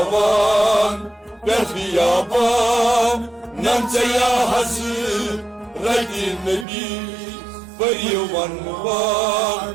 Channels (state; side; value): drops out; left; at 6.7 s